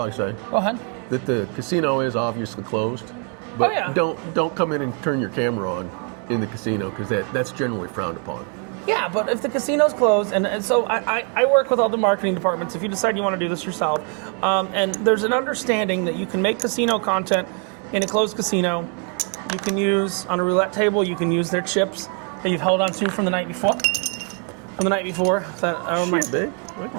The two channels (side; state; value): left; quieter; 39.7 dB